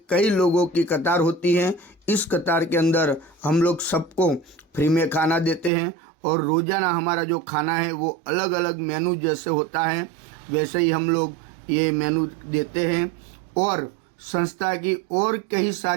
कई लोगों की कतार होती है। इस कतार के अंदर हम लोग सबको फ्री में खाना देते हैं और रोज़ाना हमारा जो खाना है वो अलग अलग मेनू जैसे होता है वैसे ही हम लोग ये मेनू देते हैं। और संस्था की और कई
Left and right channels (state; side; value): drops out; left; at 5.7 s